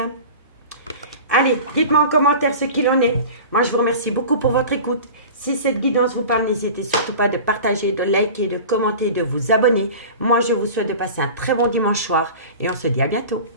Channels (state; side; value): inverted; both; correlation -0.36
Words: Allez, dites-moi en commentaire ce qu'il en est. Moi, je vous remercie beaucoup pour votre écoute. Si cette guidance vous parle, n'hésitez surtout pas de partager, de liker, de commenter, de vous abonner. Moi, je vous souhaite de passer un très bon dimanche soir et on se dit à bientôt.